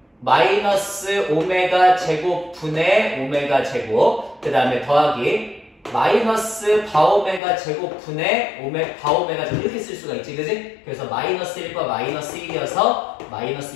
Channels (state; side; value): drops out; right; at 7.4 s